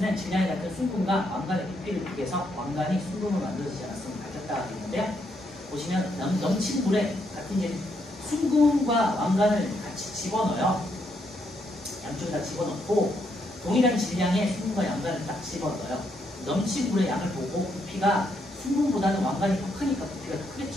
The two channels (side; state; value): both; normal; correlation 0.76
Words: 질량이 같은 순금과 왕관의 부피를 비교해서 왕관이 순금으로 만들어지지 않았음을 밝혔다고 되어 있는데요. 보시면 넘친 물에 같은 이제 순금과 왕관을 같이 집어넣어요. 양쪽에다 집어넣고 동일한 질량의 순금과 왕관을 딱 집어넣어요. 넘친 물의 양을 보고 부피가 순금보다는 왕관이 더 크니까 부피가 더